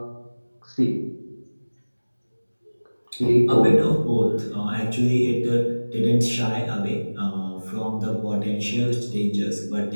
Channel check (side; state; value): both; inverted; correlation -1.00